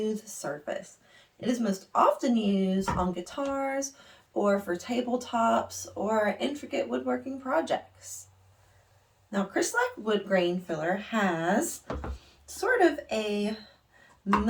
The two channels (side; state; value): both; identical; correlation 1.00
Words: surface. It is most often used on guitars or for tabletops or intricate woodworking projects. Now, CrystaLac Wood Grain Filler has sort of a